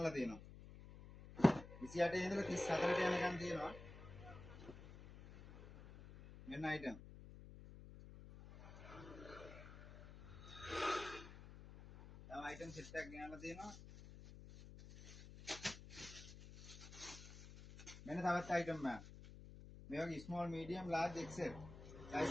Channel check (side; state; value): left; noise; hum, 14 dB below the sound